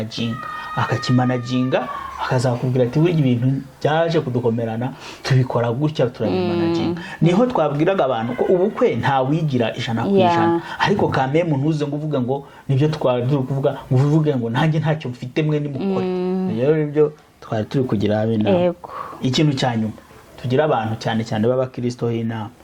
akakimanaginga, akazakubwira ati burya ibintu byaje kudukomerana tubikora gutya turabimanaginga. Niho twabwiraga abantu ko ubukwe nta wigira 100%, ariko kame muntu uze ngo uvuga ngo nibyo twari turi kuvuga, ngo uvuge ngo nanjye ntacyo mfite mwe nimukore. Rero nibyo twari turi kugira abina. Ikintu cya nyuma tugira abantu cyane cyane b'abakristo h'inama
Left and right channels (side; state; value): both; identical; correlation 1.00